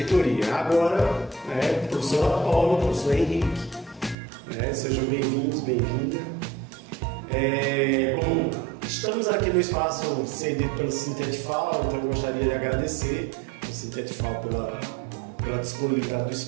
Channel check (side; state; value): left; drops out; at 4.2 s